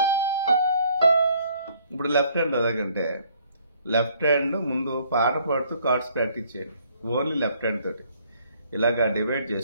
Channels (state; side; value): inverted; both; correlation -0.63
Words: ఇప్పుడు లెఫ్ట్ హ్యాండ్ అలాగంటే లెఫ్ట్ హ్యాండ్ ముందు పాట పాడుతూ కార్డ్స్ ప్రాక్టీస్ చేయండి. ఓన్లీ లెఫ్ట్ హ్యాండ్ తోటి ఇలాగా డివైడ్